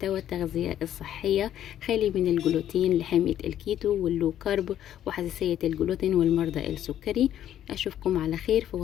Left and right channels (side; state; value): right; quieter; 11.2 dB